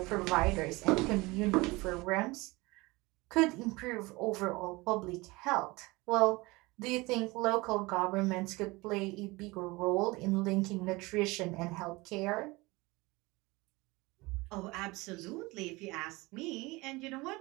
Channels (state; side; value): quieter; left; 22.9 dB